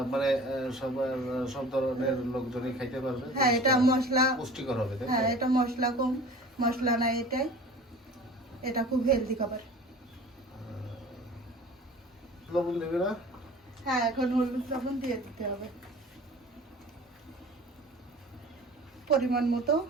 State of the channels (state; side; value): normal; both; correlation 0.42